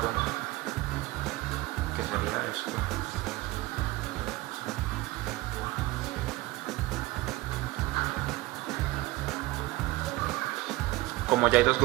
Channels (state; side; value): quieter; left; 19.5 dB